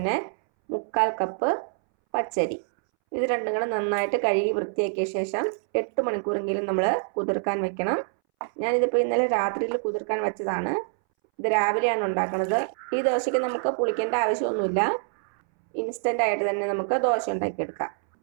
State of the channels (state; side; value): silent; left; 61 dB below the other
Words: 3/4 കപ്പ് പച്ചരി. ഇത് രണ്ടും കൂടെ നന്നായിട്ട് കഴുകി വൃത്തിയാക്കിയ ശേഷം 8 മണിക്കൂറെങ്കിലും നമ്മൾ കുതിർക്കാൻ വെക്കണം. ഞാനിതിപ്പോൾ ഇന്നലെ രാത്രിയിൽ കുതിർക്കാൻ വെച്ചതാണ്. ഇത് രാവിലെയാണ് ഉണ്ടാക്കുന്നത്. ഈ ദോശയ്ക്ക് നമുക്ക് പുളിക്കേണ്ട ആവശ്യമൊന്നുമില്ല. ഇൻസ്റ്റൻ്റ് ആയിട്ട് തന്നെ നമുക്ക് ദോശ ഉണ്ടാക്കിയെടുക്കാം.